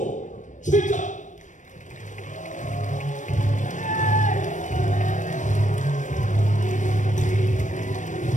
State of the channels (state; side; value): late; right; 0.36 ms